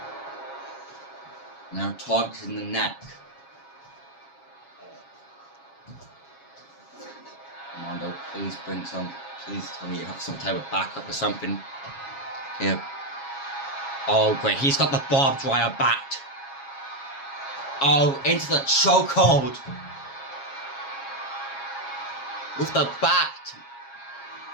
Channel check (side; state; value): right; late; 7.3 ms